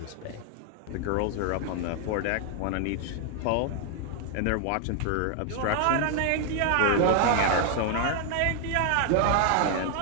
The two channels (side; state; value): both; different; correlation 0.00